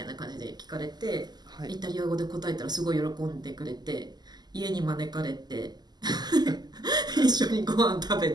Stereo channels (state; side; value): late; left; 0.20 ms